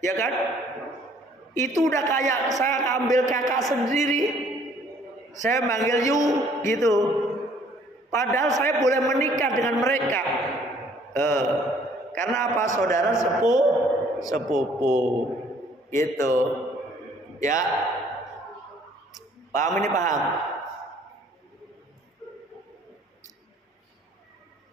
kan? Itu udah kayak saya ambil kakak sendiri. Saya manggil Yu gitu. Padahal saya boleh menikah dengan mereka. Karena apa? Saudara sepupu. Gitu. Ya. Paham ini, paham?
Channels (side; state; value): both; normal; correlation 0.59